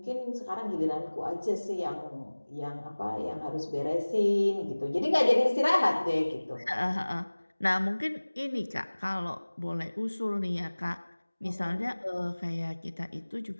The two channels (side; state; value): both; inverted; correlation -1.00